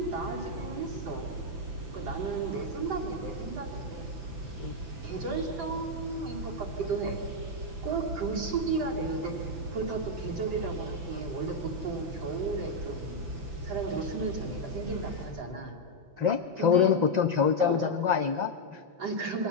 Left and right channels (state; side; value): late; left; 6.0 ms